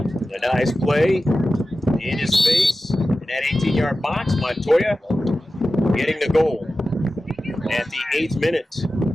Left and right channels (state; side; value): normal; both; correlation 0.94